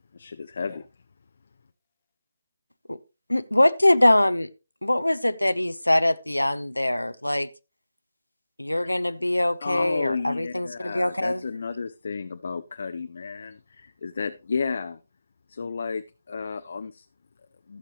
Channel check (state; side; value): inverted; both; correlation -0.98